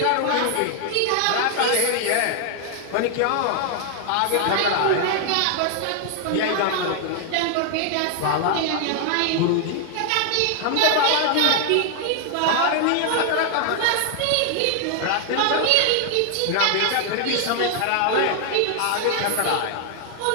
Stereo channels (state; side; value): different; both; correlation 0.00